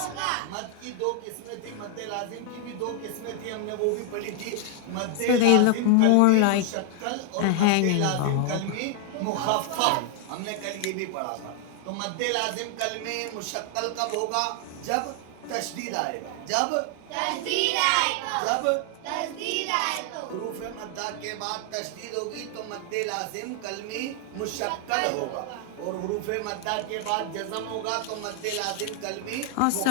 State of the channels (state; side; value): different; both; correlation 0.00